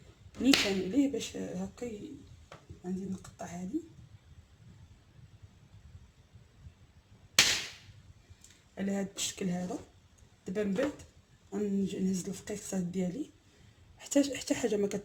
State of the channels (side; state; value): both; identical; correlation 1.00